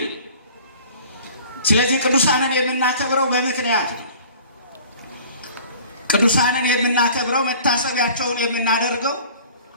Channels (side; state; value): both; inverted; correlation -0.47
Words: ስለዚህ ቅዱሳንን የምናከብረው በምክንያት ነው። ቅዱሳንን የምናከብረው መታሰቢያቸውን የምናደርገው